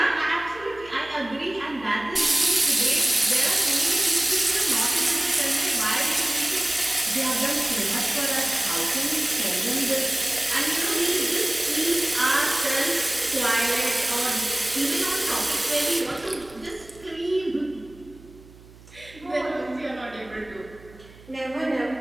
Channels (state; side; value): noise; right; hum, 22 dB below the sound